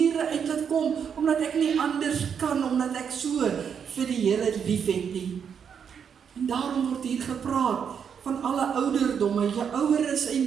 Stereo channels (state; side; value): quieter; left; 7.3 dB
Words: uit laat kom, omdat ek nie anders kan, omdat ek so vir die Here liefhet nie. En daarom word hier gepraat van alle ouderdomme, oueres en